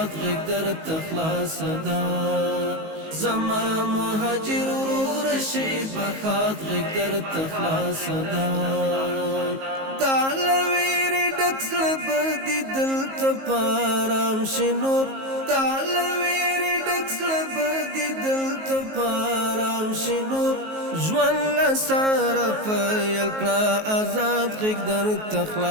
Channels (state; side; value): late; left; 19 ms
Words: غږ درته خلاصه ده زما مهاجر ورور شي بخات غږ درته خلاصه ده دا لویری ډک زړه به دې دلته په ارام شي نور دا لویری ډک زړه به دې دلته په ارام شي نور ژوند له سره پیل کړه ازاد غږ درته